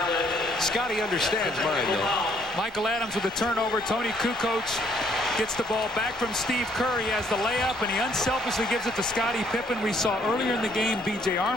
Scottie understands mine, though. Michael Adams with the turnover. Tony Kukoc Gets the ball back from Steve Kerr. He has the layup, and he unselfishly gives it to Scottie Pippen. We saw earlier in the game B.J.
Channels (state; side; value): normal; both; correlation 0.66